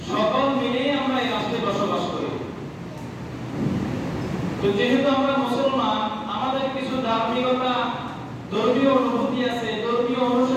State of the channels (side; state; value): both; identical; correlation 1.00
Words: সকল মিলেই আমরা এই রাষ্ট্রে বসবাস করি। তো যেহেতু আমরা মুসলমান, আমাদের কিছু ধার্মিকতা, ধর্মীয় অনুভূতি আছে, ধর্মীয়